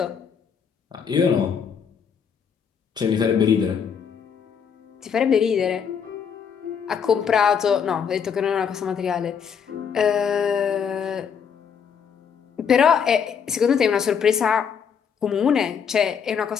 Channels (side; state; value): right; quieter; 7.1 dB